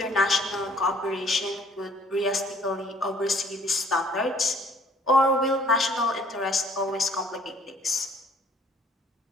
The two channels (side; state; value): both; normal; correlation 0.59